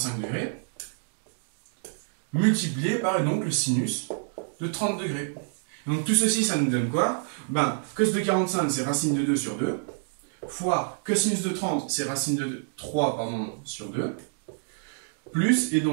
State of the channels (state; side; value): silent; left; digital silence